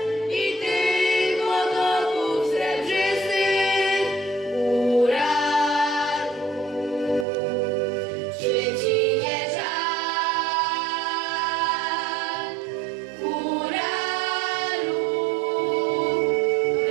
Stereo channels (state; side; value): drops out; left; at 7.2 s